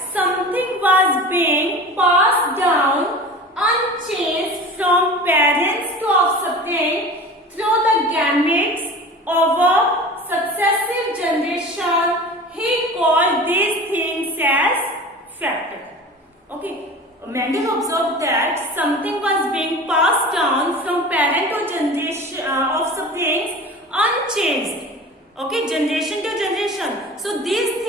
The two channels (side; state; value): both; normal; correlation 0.36